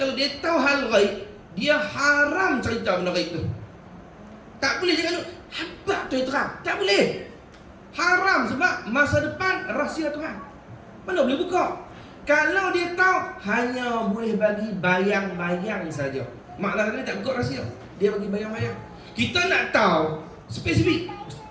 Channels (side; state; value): both; identical; correlation 1.00